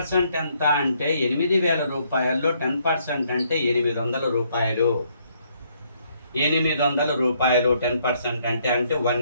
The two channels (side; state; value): both; inverted; correlation -0.70